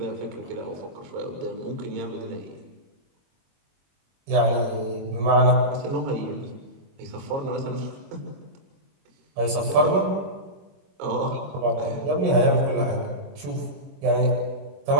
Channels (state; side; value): late; left; 21 ms